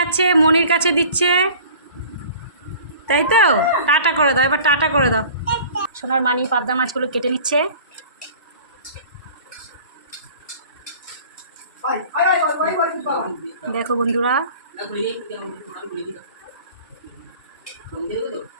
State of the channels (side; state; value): both; inverted; correlation -0.45